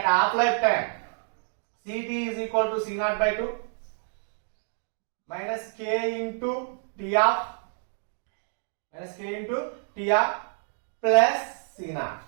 half-life time, Ct is equal to C0 by 2 minus K into T half plus C0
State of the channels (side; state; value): left; silent; digital silence